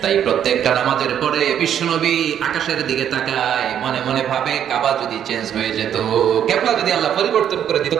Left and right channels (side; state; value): left; quieter; 9.6 dB